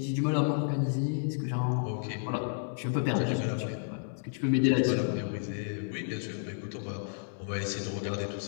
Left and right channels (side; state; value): right; silent; 57 dB below the other